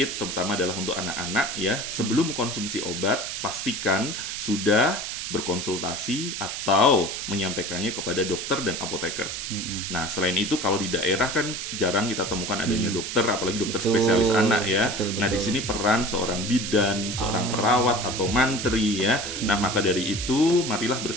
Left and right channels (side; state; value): right; noise; hiss, 5 dB below the sound